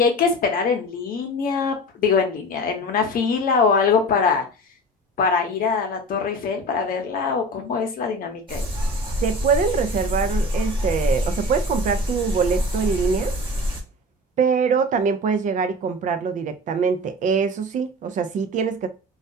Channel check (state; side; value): normal; both; correlation 0.33